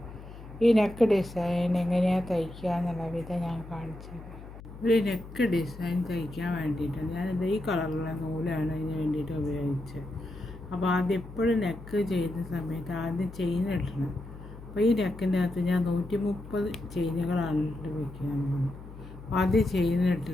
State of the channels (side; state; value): left; noise; hum, 15 dB below the sound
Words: ഈ നെക്ക് ഡിസൈൻ എങ്ങനെയാണ് തയ്ക്കുക എന്നുള്ള വിധം ഞാൻ കാണിച്ചത്. ഒരു നെക്ക് ഡിസൈൻ തയ്ക്കാൻ വേണ്ടിയിട്ട് ഞാനിത് ഈ കളറുള്ള നൂലാണ് ഇതിന് വേണ്ടിയിട്ട് ഉപയോഗിച്ചത്. അപ്പോൾ ആദ്യം എപ്പോഴും നെക്ക് ചെയ്യുന്ന സമയത്ത് ആദ്യം ചെയിൻ ഇടണം. അപ്പോൾ ഈ നെക്കിൻ്റെ അകത്ത് ഞാൻ 130 ചെയിനുകളാണ് ഇട്ട് വയ്ക്കുന്നത്. ആദ്യം ചെയിൻ ഇട്ട്